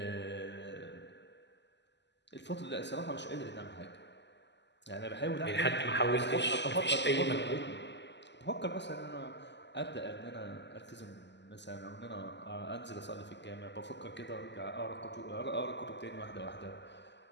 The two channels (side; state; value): right; late; 0.51 ms